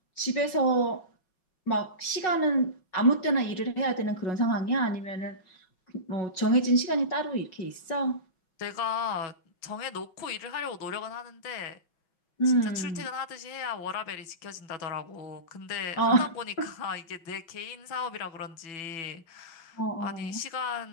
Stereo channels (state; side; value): late; right; 5.4 ms